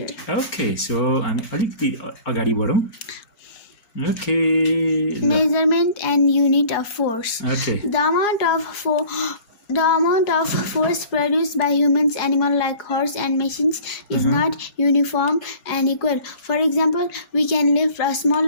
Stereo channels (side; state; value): right; late; 4.8 ms